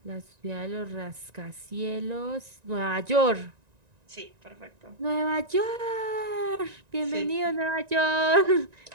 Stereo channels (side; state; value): left; late; 1.9 ms